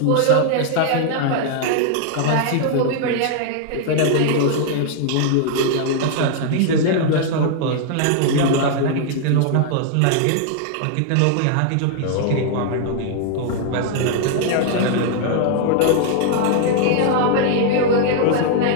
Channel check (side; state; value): both; different; correlation 0.00